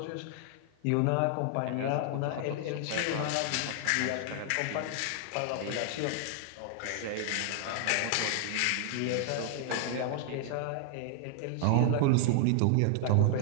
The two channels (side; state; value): both; different; correlation 0.00